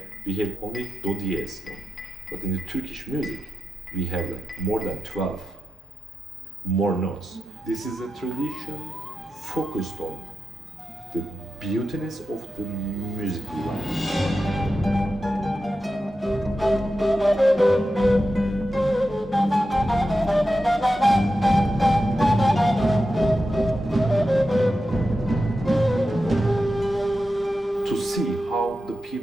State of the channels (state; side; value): normal; both; correlation 0.91